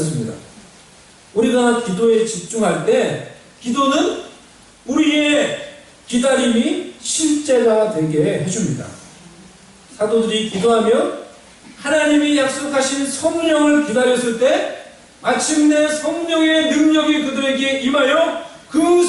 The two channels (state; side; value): identical; both; correlation 1.00